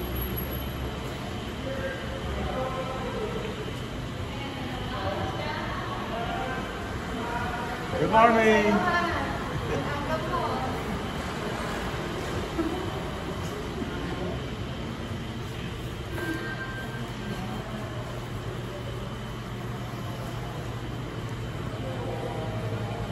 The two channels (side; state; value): both; identical; correlation 1.00